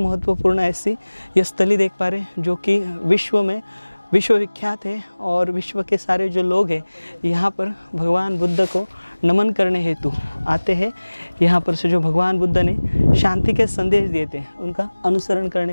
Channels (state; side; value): inverted; both; correlation -1.00